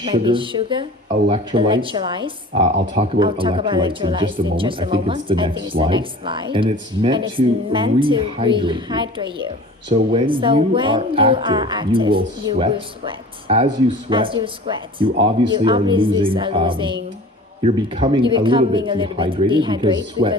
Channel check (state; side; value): normal; both; correlation 0.41